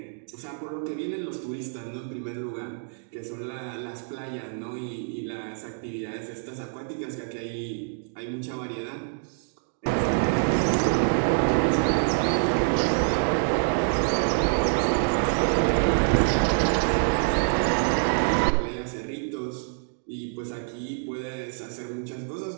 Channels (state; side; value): silent; left; digital silence